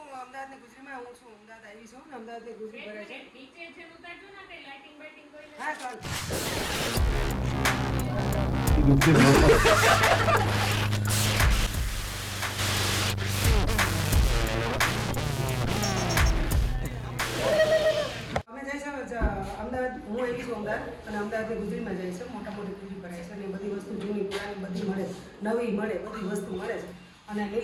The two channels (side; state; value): both; identical; correlation 1.00